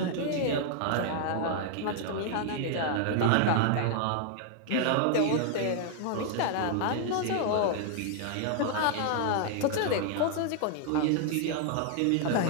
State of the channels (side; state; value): both; different; correlation 0.00